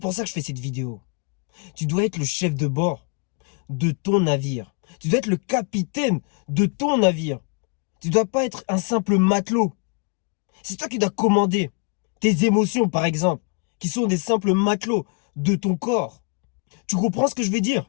ça que je fais cette vidéo. Tu dois être le chef de bord de ton navire. Tu dois être le capitaine de ton navire. Tu dois pas être un simple matelot. C'est toi qui dois commander tes émotions, par exemple, qui sont des simples matelots de ton corps. Tu comprends ce que je veux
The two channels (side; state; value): right; quieter; 34.8 dB